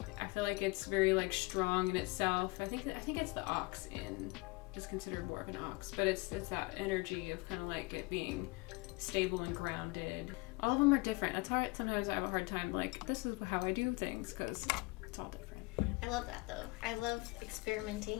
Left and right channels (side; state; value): right; quieter; 25.0 dB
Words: I feel like it's very like strong in itself. I think it's the ox is considered more of an ox, but it's that energy of kind of like it being stable and grounded. All of them are different. That's hard. Sometimes I have a hard time like, this is how I do things, because it's all different. I love that though. I love